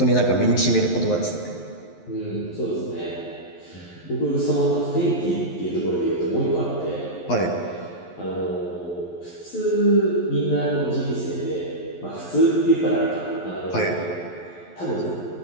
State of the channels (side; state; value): right; late; 11 ms